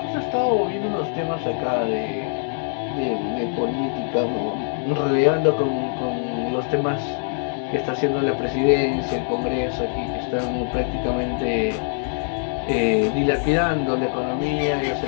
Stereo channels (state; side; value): silent; right; 63 dB below the other